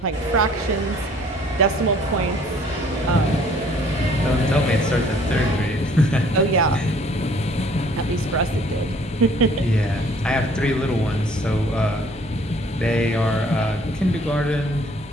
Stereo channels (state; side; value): normal; both; correlation 0.57